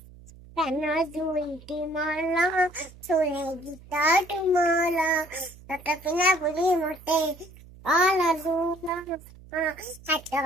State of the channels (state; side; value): noise; right; hum, 21 dB below the sound